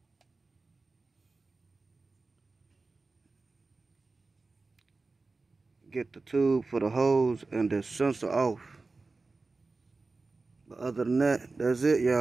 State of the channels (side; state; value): left; quieter; 3.7 dB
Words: get the tube for the hose and the sensor off. But other than that, that's it,